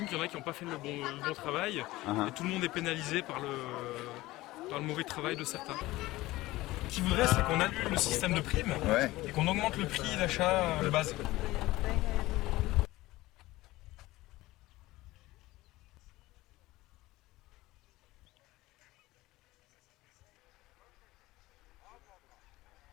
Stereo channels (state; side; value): quieter; right; 18.4 dB